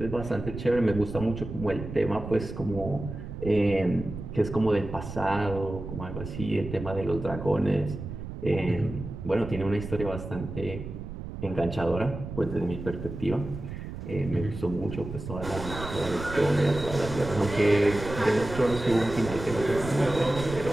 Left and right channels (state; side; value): noise; right; rumble, 9 dB below the sound